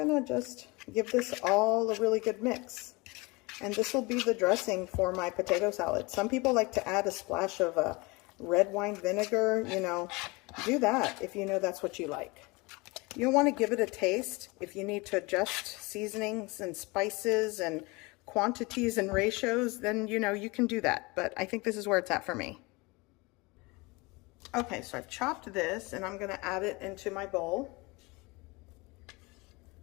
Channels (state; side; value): quieter; right; 25.3 dB